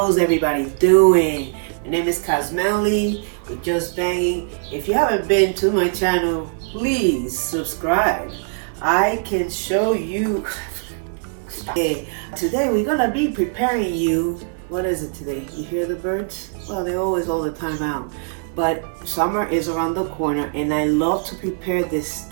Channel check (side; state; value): left; silent; 62 dB below the other